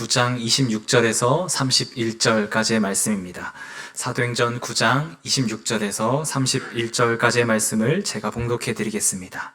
26절에서 31절까지의 말씀입니다. 사도행전 9장 26절에서 31절까지의 말씀을 제가 봉독해 드리겠습니다.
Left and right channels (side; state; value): both; identical; correlation 1.00